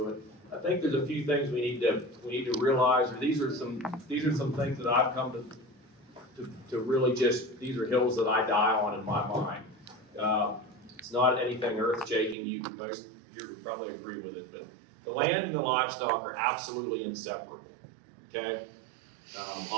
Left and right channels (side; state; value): left; drops out; at 12.4 s